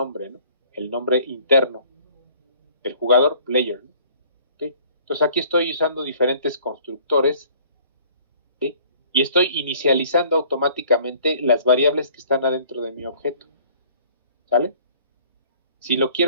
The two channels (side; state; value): both; inverted; correlation -0.55